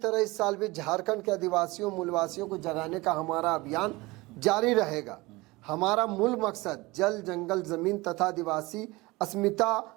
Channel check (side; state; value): left; quieter; 22.1 dB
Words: इस साल भी झारखंड के आदिवासियों मूलवासियों को जगाने का हमारा अभियान जारी रहेगा। हमारा मूल मकसद जल, जंगल, जमीन तथा आदिवासी अस्मिता